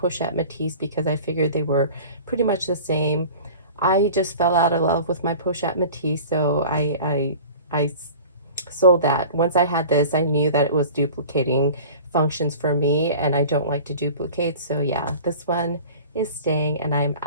Matisse because I figured they were pretty much the same. I just fell out of love with my Pochette Matisse, so I sold that. Once I had this, I knew that it was duplicating functions for me, and I don't like to duplicate, so yeah, this one is staying, and I'm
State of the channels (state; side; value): inverted; both; correlation -0.41